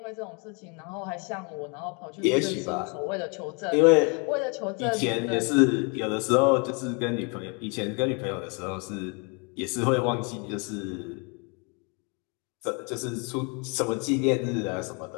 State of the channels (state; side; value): quieter; right; 34.0 dB